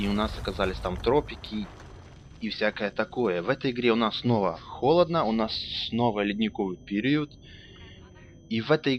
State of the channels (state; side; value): identical; both; correlation 1.00